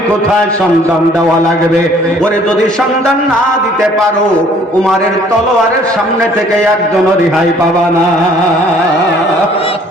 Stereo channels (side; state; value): both; normal; correlation 0.58